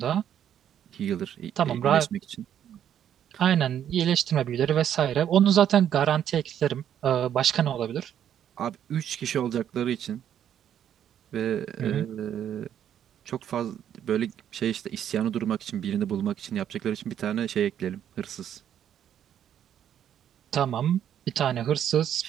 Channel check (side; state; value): left; quieter; 9.8 dB